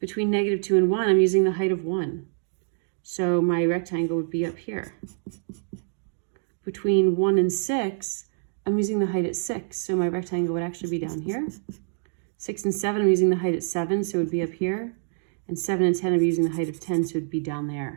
-2 and 1, I'm using the height of 1. So my rectangle would be up here. Between 1 and 6, I'm using the height at 6. So my rectangle would actually be down here. 6 and 7, I'm using the height at 7, so it would be up here. And 7 and 10, I'm using the height of 10, so it would be down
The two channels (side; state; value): left; silent; digital silence